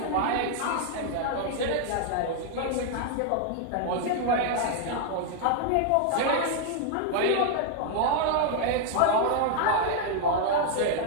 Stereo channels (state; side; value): different; both; correlation 0.00